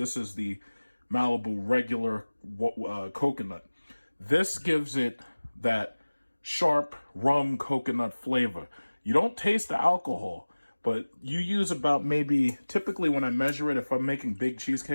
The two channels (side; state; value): both; inverted; correlation -1.00